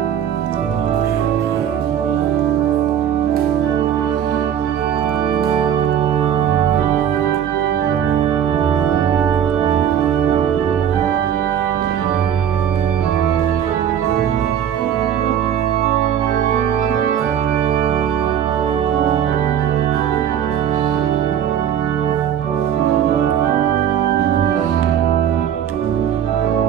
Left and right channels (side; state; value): left; quieter; 9.4 dB